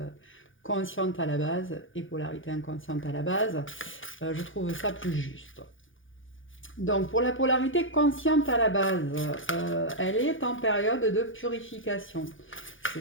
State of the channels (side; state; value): right; late; 0.57 ms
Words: consciente à la base et polarité inconsciente à la base. Je trouve ça plus juste. Donc pour la polarité consciente à la base, elle est en période de purification. C'est